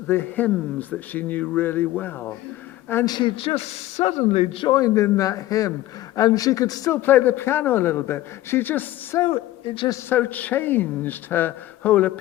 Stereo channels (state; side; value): quieter; right; 15.4 dB